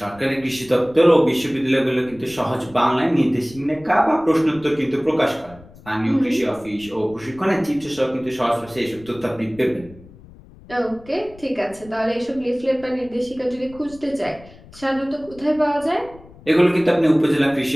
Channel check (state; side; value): noise; left; rumble, 22 dB below the sound